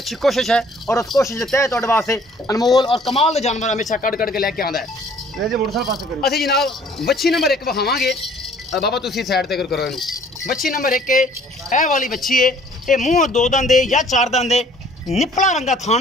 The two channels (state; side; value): normal; both; correlation 0.56